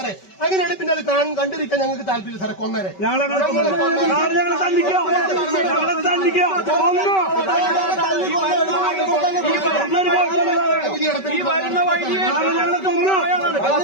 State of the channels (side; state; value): right; late; 5.2 ms